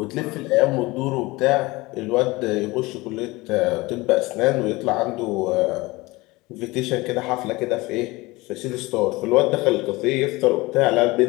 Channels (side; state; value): right; quieter; 21.8 dB